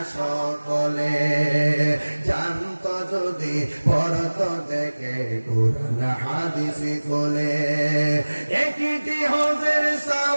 সকলে। জানতো যদি পড়তো দেখে কুরআন হাদিস খুলে, একটি হজের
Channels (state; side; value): inverted; both; correlation -1.00